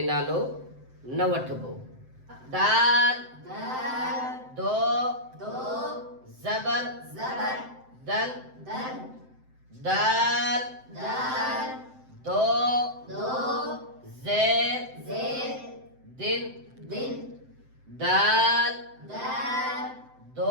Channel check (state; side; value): late; left; 7.8 ms